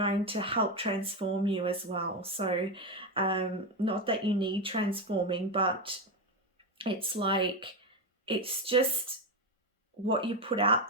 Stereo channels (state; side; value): normal; both; correlation 0.11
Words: to help transform you as well. So not that you need transforming, but it's like, it's just what you put out